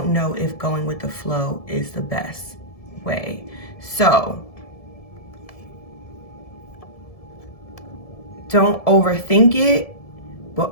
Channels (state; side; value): late; right; 1.7 ms